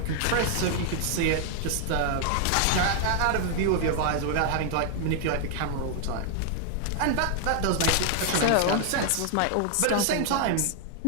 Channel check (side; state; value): both; different; correlation 0.00